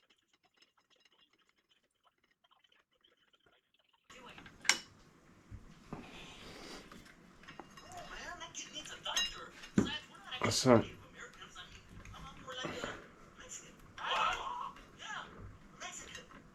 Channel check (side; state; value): both; identical; correlation 1.00